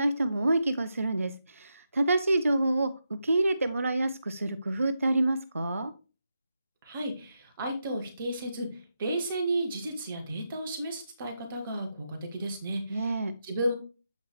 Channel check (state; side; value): inverted; both; correlation -0.86